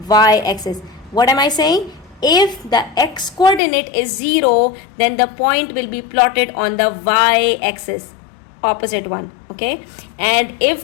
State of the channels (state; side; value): drops out; right; at 3.6 s